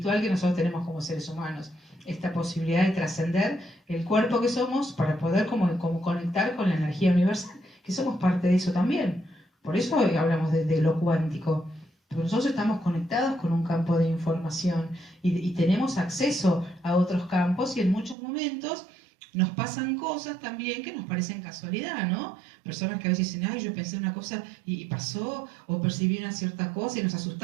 que nosotros tenemos como seres humanos. Esta posibilidad de trascender el cuerpo que somos para poder como conectar con la energía universal, que somos parte de eso también. Por eso hoy hablamos de lo cuántico. Porque nosotros estamos conectados con un campo de información y tenemos acceso a otros campos y en muchos momentos nos pasan cosas también que nos parecen casualidad, ¿no? Personas que a veces dicen, ay, yo pensé una cosa y pasó, o percibí una cierta cosa y nos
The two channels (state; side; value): drops out; left; at 18.2 s